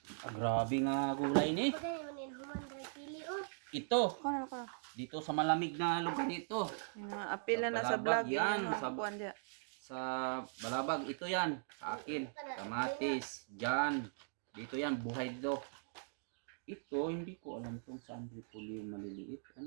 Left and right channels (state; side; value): silent; left; digital silence